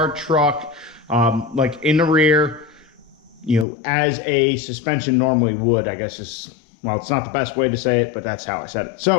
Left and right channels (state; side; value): drops out; right; at 3.7 s